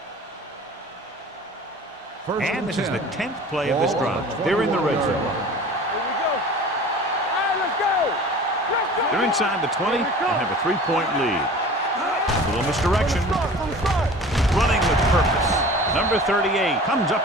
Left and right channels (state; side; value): normal; both; correlation 0.41